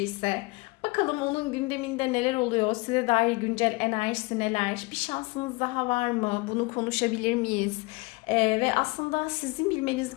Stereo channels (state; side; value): quieter; right; 25.4 dB